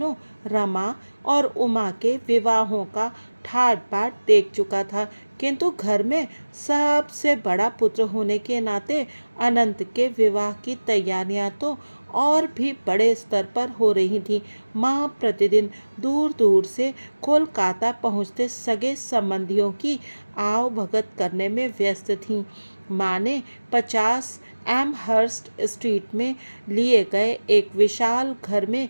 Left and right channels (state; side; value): inverted; both; correlation -1.00